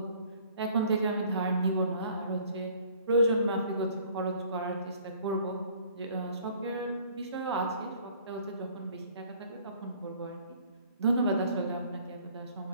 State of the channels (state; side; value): inverted; both; correlation -0.55